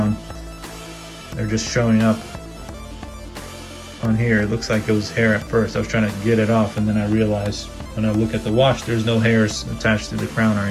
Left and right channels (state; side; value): identical; both; correlation 1.00